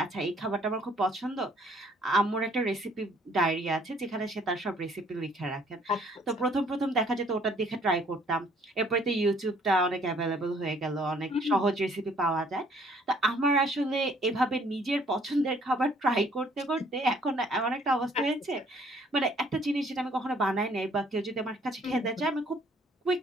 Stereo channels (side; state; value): both; normal; correlation 0.61